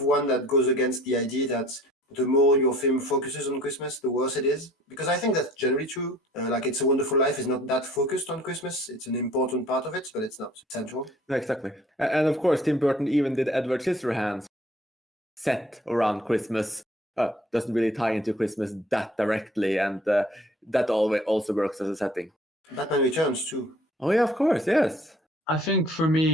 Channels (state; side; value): normal; both; correlation 0.53